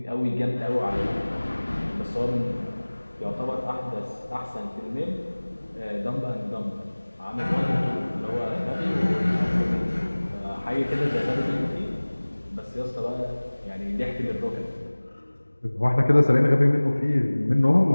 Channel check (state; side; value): inverted; both; correlation -1.00